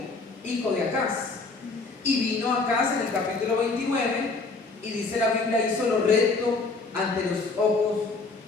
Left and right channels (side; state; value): right; quieter; 3.8 dB